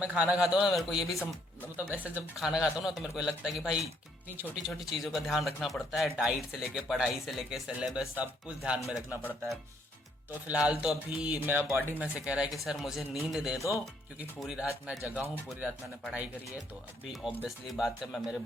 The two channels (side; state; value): both; normal; correlation 0.69